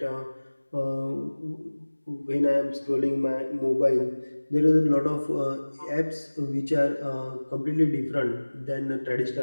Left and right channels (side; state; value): both; inverted; correlation -1.00